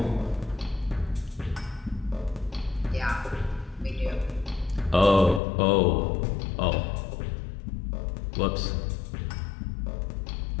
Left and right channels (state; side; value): drops out; right; at 5.4 s